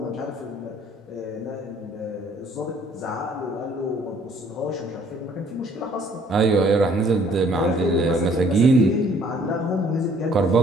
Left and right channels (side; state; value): both; normal; correlation 0.59